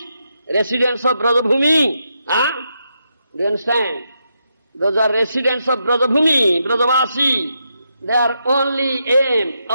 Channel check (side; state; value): both; inverted; correlation -0.82